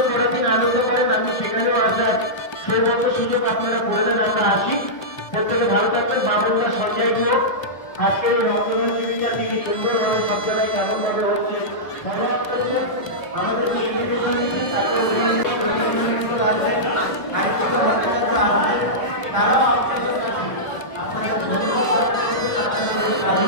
করার দিন আনন্দ করেন। আমি সেখানেও আসার সৌভাগ্য সুযোগ আপনারা করে দেন, আমরা আসি। প্রত্যেকে ভালো থাকবেন। বাবনদা সঞ্জয় গুহ আজকের এই রক্তদান শিবিরটা তিনি সুন্দরভাবে সব জায়গায় কেমনভাবে হচ্ছে ধন্যবাদ করছেন। আমাদেরকে এগিয়ে দিচ্ছেন, তারপর তারা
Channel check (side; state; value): right; late; 1.3 ms